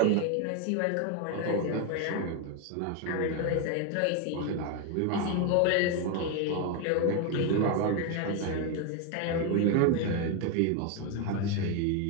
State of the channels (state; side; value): different; both; correlation 0.01